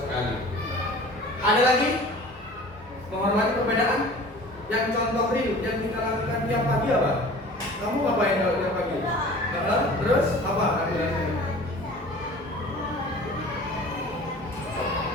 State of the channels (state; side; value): normal; both; correlation 0.43